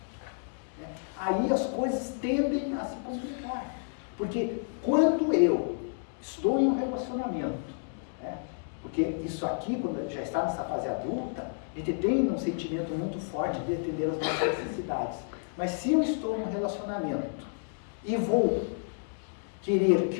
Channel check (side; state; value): right; silent; digital silence